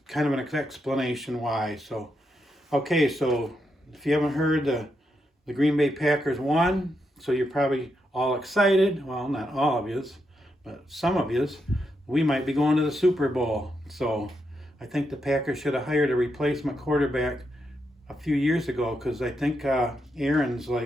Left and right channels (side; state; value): both; normal; correlation 0.82